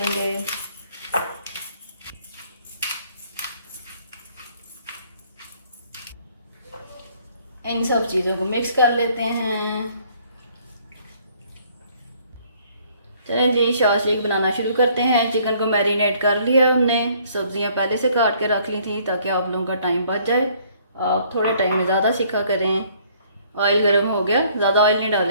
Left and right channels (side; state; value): both; inverted; correlation -0.61